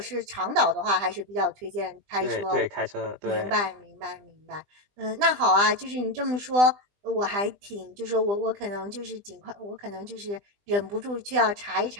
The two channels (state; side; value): late; left; 20 ms